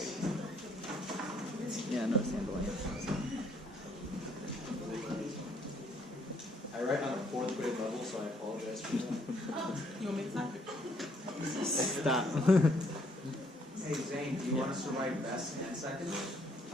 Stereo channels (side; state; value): both; normal; correlation 0.67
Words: Yeah, no handling it. I write on a 4th grade level, so I apologize for that. You want me to type it? Stop. Hey Zain, do you want us to write best and second?